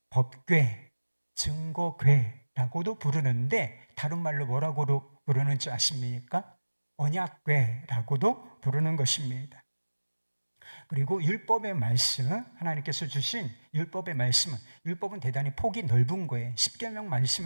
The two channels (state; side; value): inverted; both; correlation -1.00